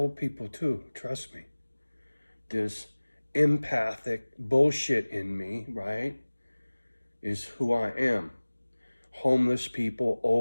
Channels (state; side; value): inverted; both; correlation -1.00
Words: people too, trust me. This empathic bullshit in me, right, is who I am. Homeless people,